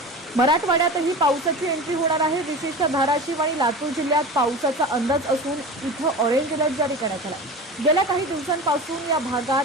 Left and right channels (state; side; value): normal; both; correlation 0.32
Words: मराठवाड्यातही पावसाची एंट्री होणार आहे। विशेषतः धाराशिव आणि लातूर जिल्ह्यात पावसाचा अंदाज असून इथं ऑरेंज अलर्ट जारी करण्यात आला। गेल्या काही दिवसांपासून या भागात